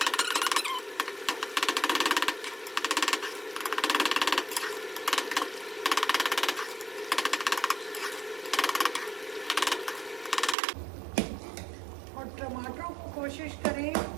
टमाटरों को कोशिश करें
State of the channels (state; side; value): drops out; left; at 10.6 s